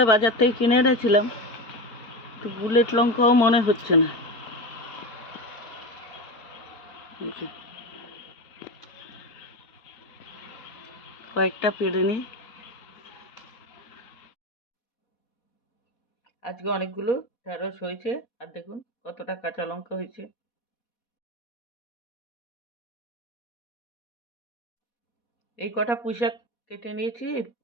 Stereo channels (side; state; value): right; late; 4.5 ms